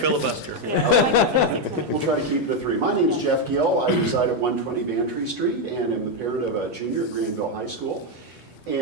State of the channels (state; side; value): normal; both; correlation 0.04